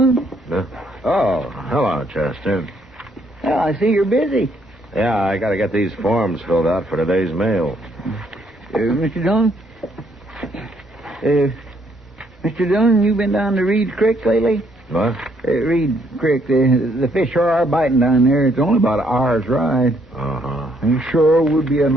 Oh, hello, Chester. Well, I see you're busy. Yeah, I got to get these forms filled out for today's mail. Mr. Dillon? Mr. Dillon, you been down to Reed's Creek lately? What? Reed Creek, the fish sure are biting down there. It's only about an hour's ride. Uh-huh. It sure would be a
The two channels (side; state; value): both; normal; correlation 0.70